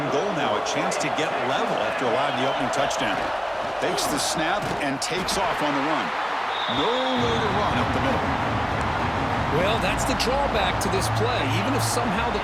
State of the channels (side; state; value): both; identical; correlation 1.00